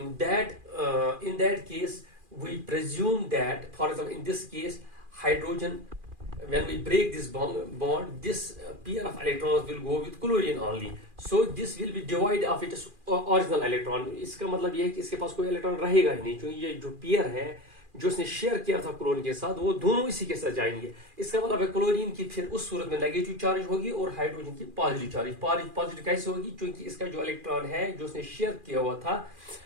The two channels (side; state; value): left; late; 2.4 ms